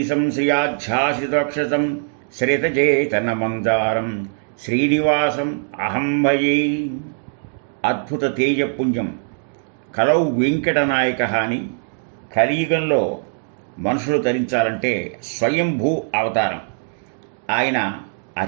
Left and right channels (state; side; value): silent; left; digital silence